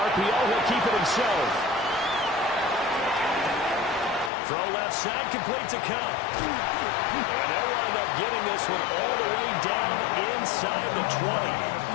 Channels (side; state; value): right; drops out; at 4.3 s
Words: he'll keep it himself. Throw left side, complete to Cup. And they'll wind up getting this one all the way down inside the 20.